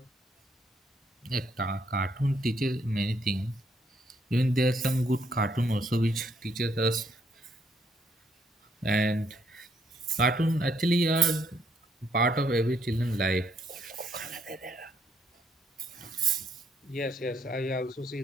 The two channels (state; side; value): normal; both; correlation 0.71